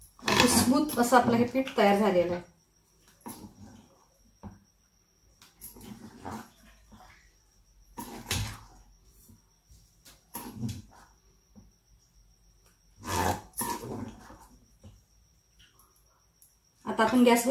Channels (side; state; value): both; identical; correlation 1.00